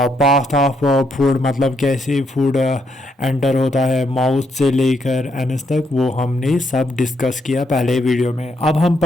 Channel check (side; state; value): both; normal; correlation 0.76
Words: ऑफ फूड, मतलब कैसे फूड एंटर होता है माउथ से लेकर एनस तक, वो हमने सब डिस्कस किया पहले वीडियो में। अब हम